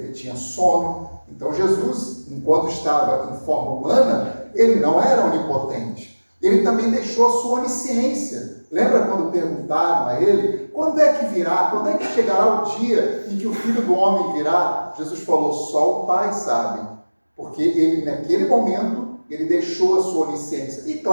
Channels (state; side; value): inverted; both; correlation -1.00